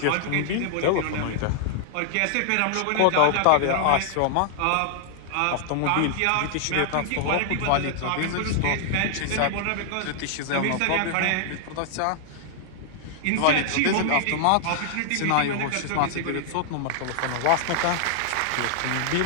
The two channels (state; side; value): different; both; correlation 0.00